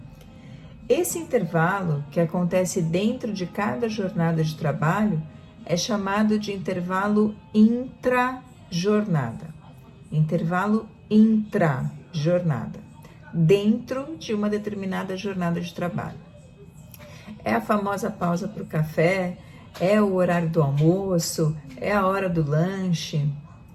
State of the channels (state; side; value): identical; both; correlation 1.00